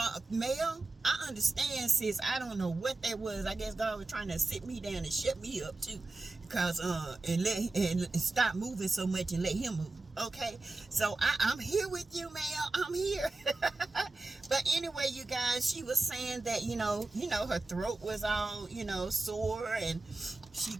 Mel, I understand, sis. I don't know what that was. I guess God was trying to sit me down and shut me up, too. Because, and stop moving so much and let him move, okay? So, I'm here with you, Mel. I'm here. But anyway, you guys, she was saying that, you know, her throat was all, you know, sore, and she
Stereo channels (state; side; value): quieter; left; 3.3 dB